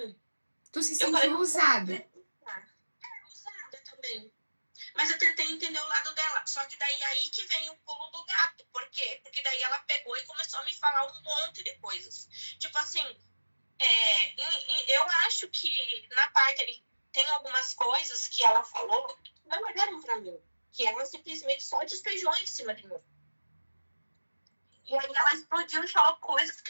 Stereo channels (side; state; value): both; inverted; correlation -1.00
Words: Tu se Eu falei, sentiu não vou usada. usada também. Mas eu tentei entender o lado dela. Só que daí aí que vem o pulo do gato. Por quê? Porque daí ela pegou e começou a me falar um monte de coisas. Tipo assim, eu acho que na parte ali tem algumas coisas que ela falou que não olharam pra mim. Que ela simplesmente só despejou em cima de mim. E aí ela explodiu e falou coisas